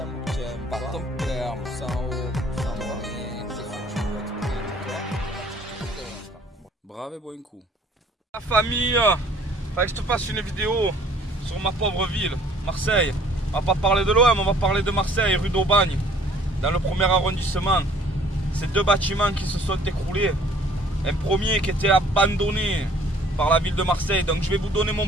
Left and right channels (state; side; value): normal; both; correlation 0.56